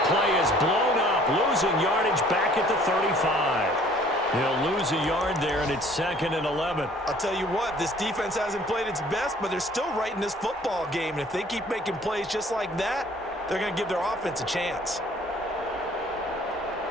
5. He'll lose a yard there, and it's 2nd and 11. I'll tell you what, this defense hasn't played its best, but they're still right in this football game. And if they keep making plays just like that, they're going to give their offense a chance.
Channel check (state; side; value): normal; both; correlation 0.55